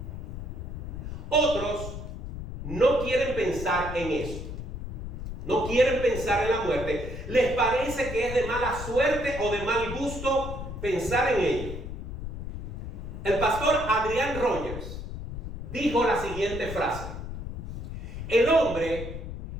Otros no quieren pensar en eso. No quieren pensar en la muerte. Les parece que es de mala suerte o de mal gusto pensar en ello. El pastor Adrian Rogers dijo la siguiente frase: el hombre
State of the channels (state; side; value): noise; left; rumble, 8 dB below the sound